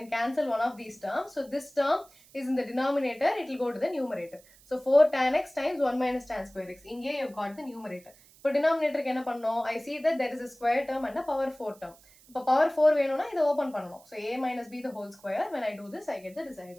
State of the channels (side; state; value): right; noise; hiss, 26 dB below the sound